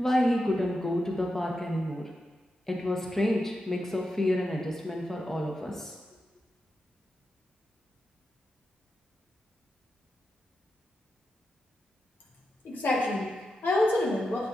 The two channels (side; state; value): both; normal; correlation 0.88